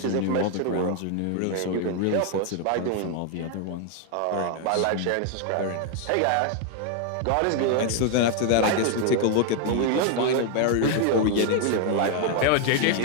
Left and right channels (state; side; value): different; both; correlation 0.00